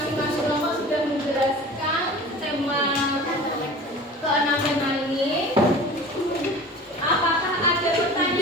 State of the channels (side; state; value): both; normal; correlation 0.39